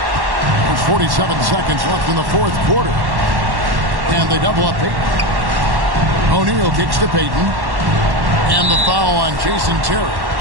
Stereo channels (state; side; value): late; left; 1.1 ms